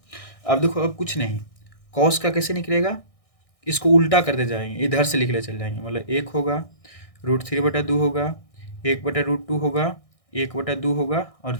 अब देखो, अब कुछ नहीं, कॉस का कैसे निकलेगा, इसको उल्टा करते जाएंगे, इधर से लिखले चल जाएंगे। मतलब 1 होगा, √3/2 होगा, 1/√2 होगा, 1/2 होगा और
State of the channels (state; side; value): late; right; 1.6 ms